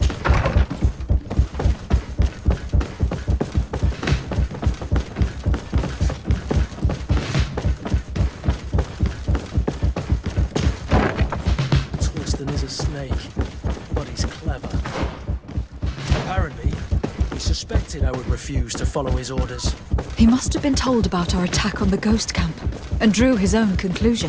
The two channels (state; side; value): identical; both; correlation 1.00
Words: Torsten is a snake, but he's clever. Apparently, he suspected I would refuse to follow his orders. He must have been told about our attack on the ghost camp and drew his own